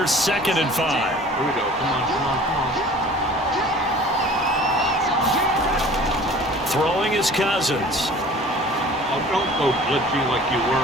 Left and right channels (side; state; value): both; normal; correlation 0.46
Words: 2nd and 5. Here we go. Come on. Throwing is Cousins. Oh, don't go glitchy like you